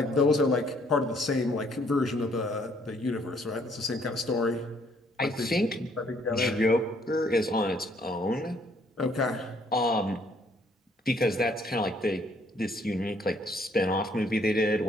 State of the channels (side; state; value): both; normal; correlation 0.65